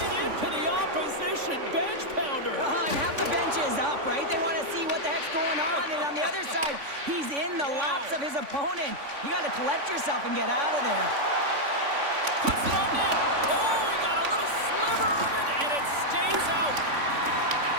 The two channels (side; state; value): left; late; 3.5 ms